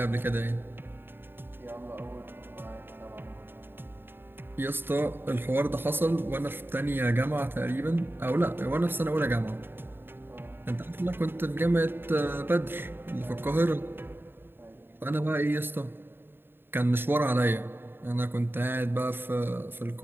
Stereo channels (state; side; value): late; left; 0.10 ms